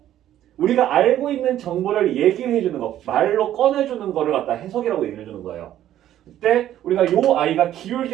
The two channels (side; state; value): left; quieter; 12.1 dB